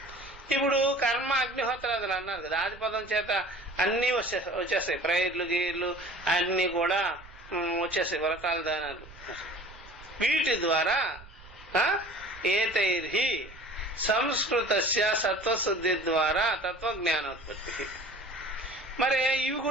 ఇప్పుడు కర్మ అగ్నిహోత్రాదులు అన్నారు కదా, ఆదిపదం చేత అన్ని వచ్చేస్తాయి. ప్రేయర్లు గీర్లు అన్ని కూడా వచ్చేస్తాయి, వ్రతాలు దానాలు. వీటి ద్వారా ఏతైర్హి సంస్కృతస్య సత్వశుద్ధి ద్వారా తత్వజ్ఞానోత్పత్తి. మరి ఇవి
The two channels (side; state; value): right; noise; rumble, 20 dB below the sound